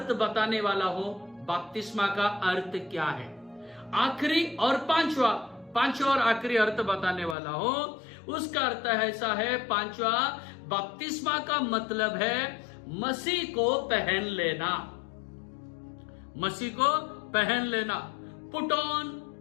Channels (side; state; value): right; drops out; at 7.4 s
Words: बताने वाला हूं। बपतिस्मा का अर्थ क्या है? आखिरी और पांचवा और आखिरी अर्थ बताने वाला हूं। उसका अर्थ ऐसा है, पांचवा, बपतिस्मा का मतलब है मसीह को पहन लेना। मसीह को पहन लेना,